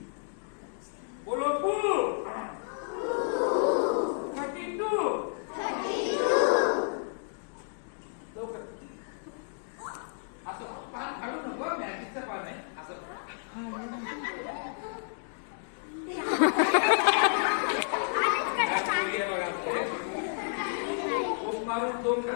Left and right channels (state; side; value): silent; right; digital silence